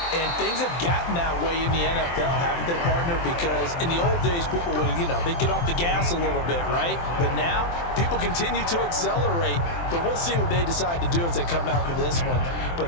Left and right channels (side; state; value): right; late; 23 ms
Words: And things have gotten that way in the NFL, haven't they, partner? Because in the old days, people would, they'd get off the gas a little bit, right? But now, people continue to accelerate. But we'll see what they decide to do as they come out for this one. But